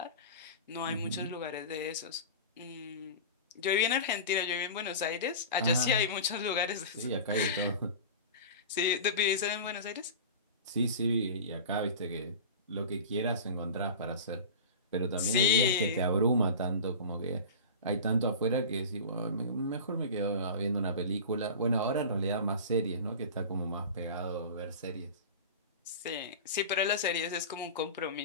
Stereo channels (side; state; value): both; inverted; correlation -0.33